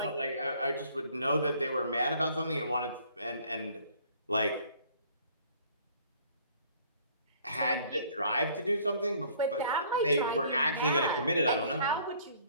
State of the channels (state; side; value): inverted; both; correlation -0.58